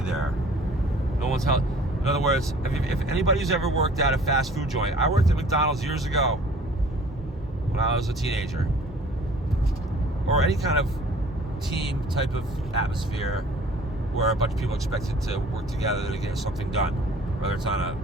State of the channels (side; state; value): both; normal; correlation 0.51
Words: there. No one's held. In other words, if anybody's ever worked at a fast food joint, I worked at McDonald's years ago when I was a teenager, or any kind of team type of atmosphere where a bunch of people are expected to work together to get something done, whether it's on